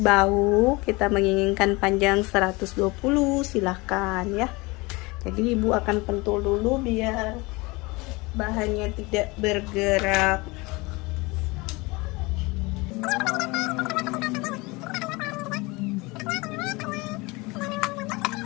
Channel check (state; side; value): quieter; right; 24.5 dB